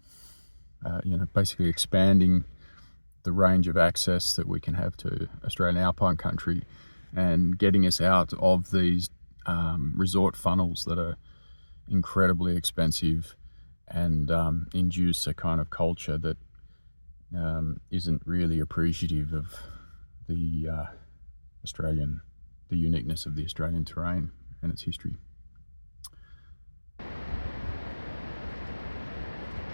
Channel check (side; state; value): both; inverted; correlation -1.00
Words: know, basically expanding the range of access that we can have to Australian alpine country, and getting us out of these resort funnels that are incredibly expensive and induce a kind of culture that isn't really appreciative of the uniqueness of the Australian terrain and its history.